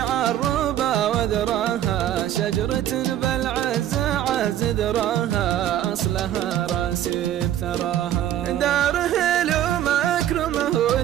وذراها، شجرة بالعز عز ذراها أصلها راسي بثراها. دار هلو مكرمه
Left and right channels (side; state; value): left; quieter; 11.6 dB